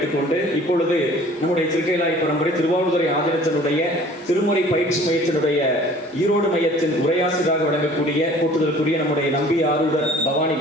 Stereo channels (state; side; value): normal; both; correlation 0.50